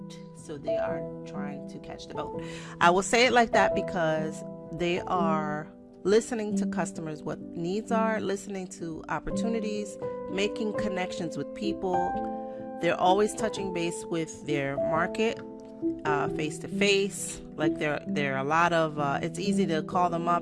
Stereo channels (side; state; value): both; identical; correlation 1.00